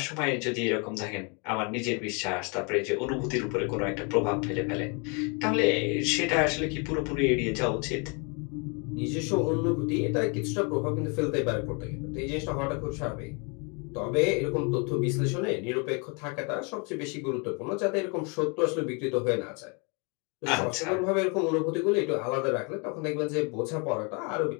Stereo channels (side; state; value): right; quieter; 33.6 dB